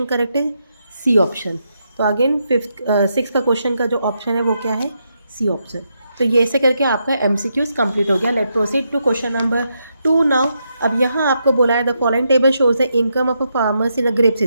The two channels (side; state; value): both; inverted; correlation -0.81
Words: करेक्ट है? C option. तो अगेन 6 का क्वेश्चन का जो ऑप्शन है वो क्या है, सी ऑप्शन। तो ये ऐसे करके आपका MCQs कंप्लीट हो गया। Let proceed to question number 2 now. अब यहाँ आपको बोला है the following table shows the income of a farmers in a grape